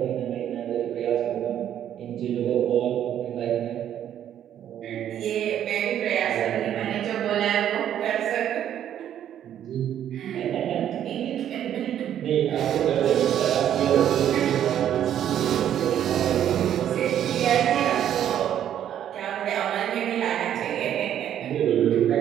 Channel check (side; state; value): left; quieter; 10.4 dB